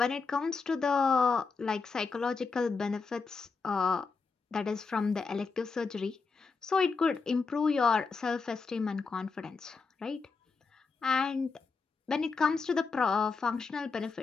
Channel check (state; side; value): quieter; right; 4.6 dB